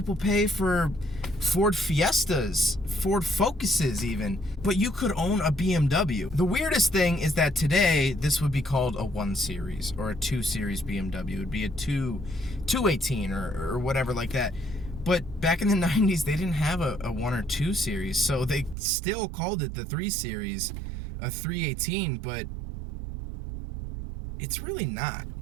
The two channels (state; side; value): drops out; left; at 18.8 s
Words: pay for Ford Fiestas, Ford Focuses even. But you could own a BMW. The weirdest thing is that today, this would be called a 1 Series or a 2 Series BMW. It would be a 218 or whatever like that. But back in the 90s, they didn't have a 1 or 2 Series, so they still called it the 3 Series, a 318, but it's really not.